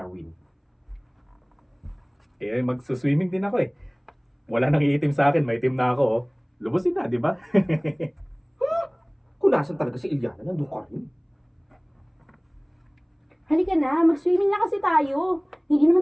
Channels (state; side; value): identical; both; correlation 1.00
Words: Magsuswimming din ako eh. Wala nang iitim sa akin, may itim na ako. Oh. Lubusin na, di ba? Kung nasan talaga si Iliana, nandun ka rin. Halika na, mag-swimming na kasi tayo. Hindi